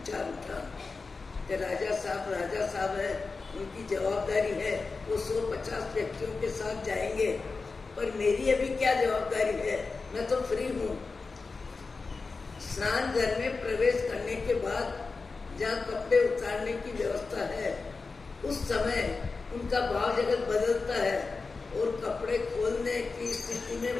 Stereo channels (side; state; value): right; quieter; 4.2 dB